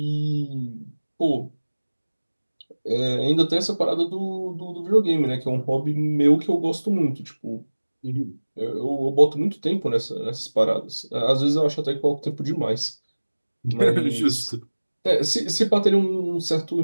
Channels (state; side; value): inverted; both; correlation -1.00